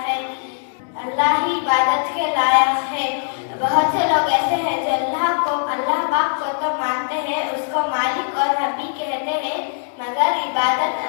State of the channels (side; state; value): right; silent; digital silence